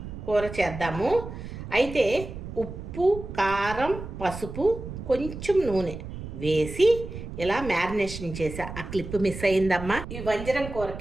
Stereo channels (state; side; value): noise; right; rumble, 10 dB below the sound